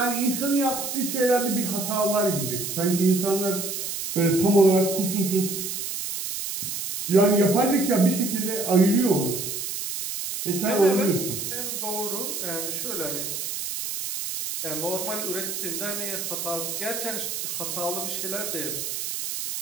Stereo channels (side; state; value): right; noise; hiss, 4 dB below the sound